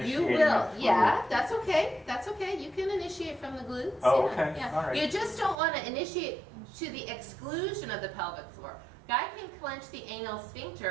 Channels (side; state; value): left; drops out; at 5.6 s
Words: You will. Yeah, that's okay. That's okay. You can initiate from the glutes. Oh, Yeah, okay. yeah. All right. You just don't want to initiate to the exclusion of the pelvic floor. Guy can clench the anal